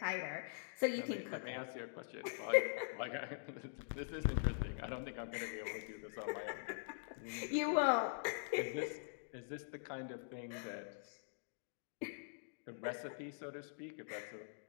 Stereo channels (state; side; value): silent; right; digital silence